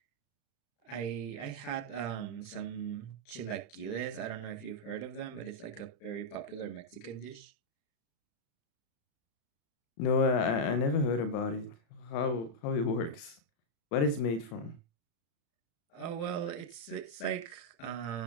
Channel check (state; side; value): late; right; 35 ms